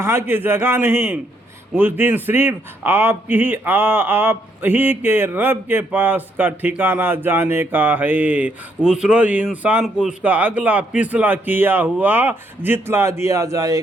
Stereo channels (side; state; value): both; normal; correlation 0.73